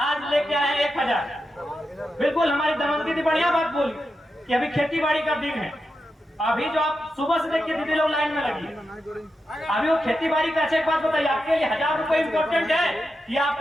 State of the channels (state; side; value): normal; both; correlation 0.88